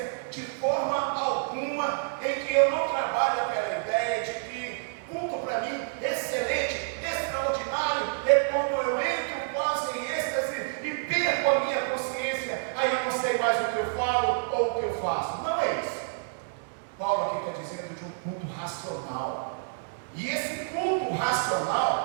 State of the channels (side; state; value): left; silent; digital silence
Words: de forma alguma, em que eu não trabalho aquela ideia de que culto para mim excelente, extraordinário, é quando eu entro quase em êxtase e perco a minha consciência, aí eu não sei mais o que eu falo ou o que eu faço. Não é isso. Paulo aqui está dizendo de um culto racional. E esse culto